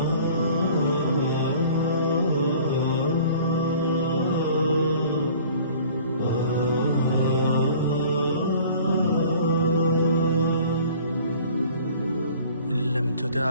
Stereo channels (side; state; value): both; inverted; correlation -0.49